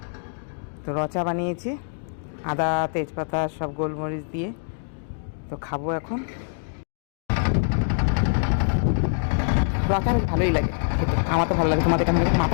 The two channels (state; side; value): silent; right; digital silence